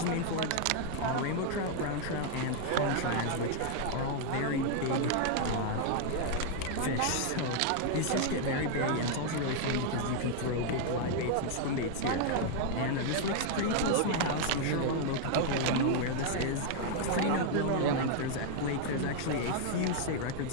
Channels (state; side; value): different; both; correlation 0.00